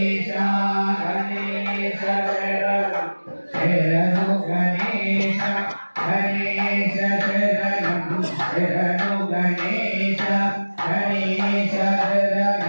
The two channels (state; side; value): inverted; both; correlation -1.00